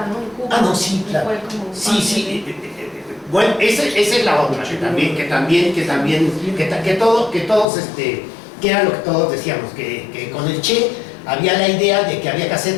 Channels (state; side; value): drops out; right; at 7.7 s